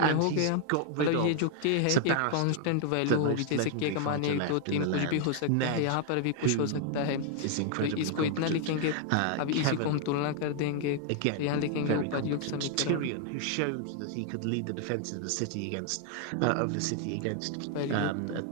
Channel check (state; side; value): different; both; correlation 0.00